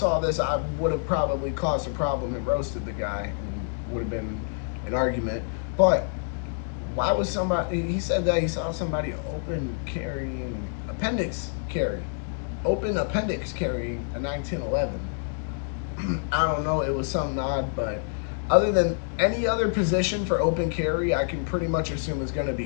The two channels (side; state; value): right; silent; digital silence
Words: this, I would have probably caused a problem and roasted the guy, and would have been an argument. But why was he said that he saw somebody open appendix carrying a 1911. I don't know, it was something odd, but other than any other position for open carry, I can pretty much assume is going to